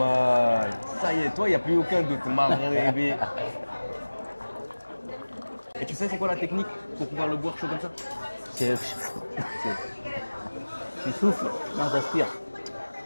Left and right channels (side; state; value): both; inverted; correlation -1.00